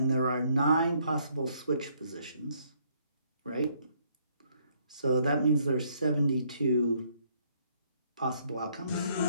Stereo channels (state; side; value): inverted; both; correlation -0.68